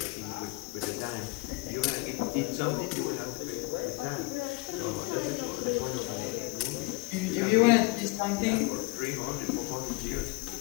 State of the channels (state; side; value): quieter; right; 24.4 dB